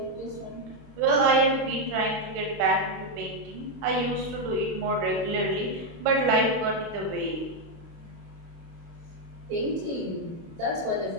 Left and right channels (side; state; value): left; late; 29 ms